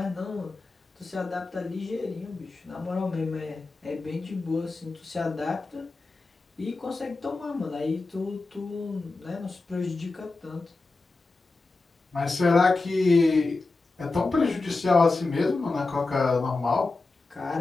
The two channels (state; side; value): quieter; right; 3.5 dB